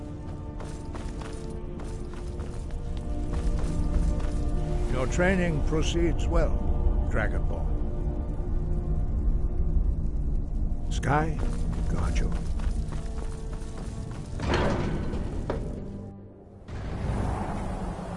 Your training proceeds well, Dragonborn. Sky, guard you.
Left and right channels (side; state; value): both; identical; correlation 1.00